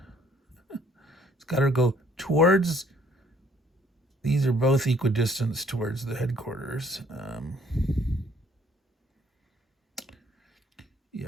It's got to go towards. These are both equidistant towards the headquarters.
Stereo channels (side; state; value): both; normal; correlation 0.62